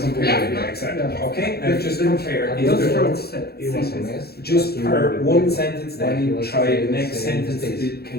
it, yeah, exactly. Okay? And just compare. Is Just the first sentence. just per one sentence, then you try the next sentence.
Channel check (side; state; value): right; late; 0.46 ms